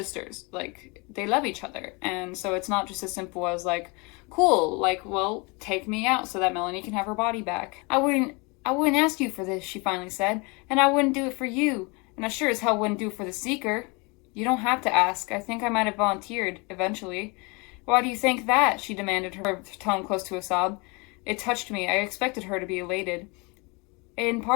Like they love each other. And so it's not just as simple as like, cool, like, well, take me out so that Melanie can have her body back. I I wouldn't ask you for this, she finally said, and I wouldn't do it for you, and I sure as hell wouldn't do it for the Seeker. You don't have to ask. I think I might have volunteered, eventually. Why do you think that? She demanded, her tone close to a sob. It touched me. I expected her to be elated. In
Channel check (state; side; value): quieter; right; 29.1 dB